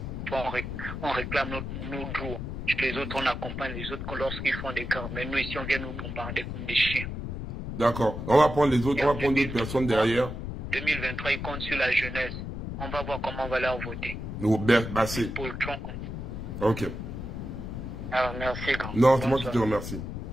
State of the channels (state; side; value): noise; left; rumble, 6 dB below the sound